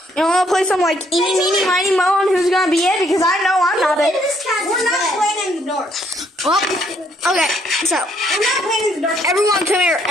You know, wanna play some like eeny, meeny, miny, mo on who's gonna be it, because I know I'm not it. We're not playing in the dark. Well, okay, so We're not playing in the dark. everyone come here.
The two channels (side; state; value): both; normal; correlation 0.68